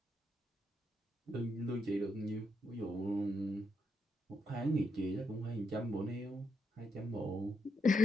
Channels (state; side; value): normal; both; correlation 0.81